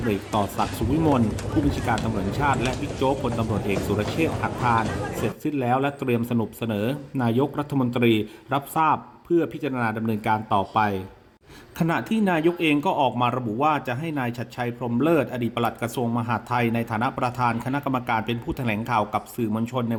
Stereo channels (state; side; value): identical; both; correlation 1.00